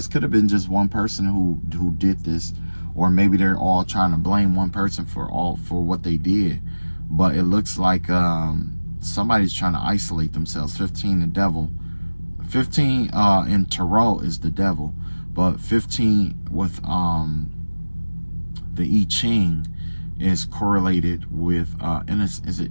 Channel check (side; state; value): both; inverted; correlation -1.00